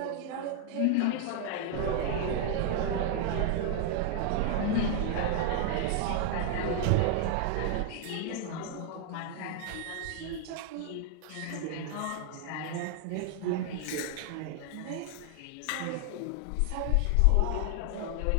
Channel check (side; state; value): both; different; correlation 0.00